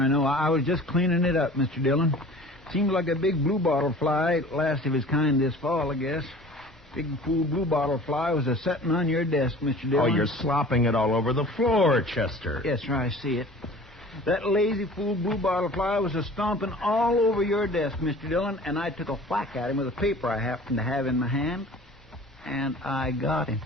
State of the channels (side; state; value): both; normal; correlation 0.44